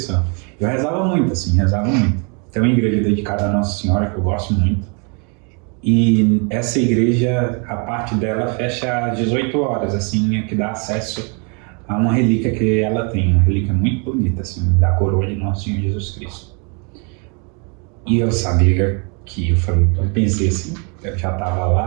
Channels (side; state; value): left; quieter; 35.5 dB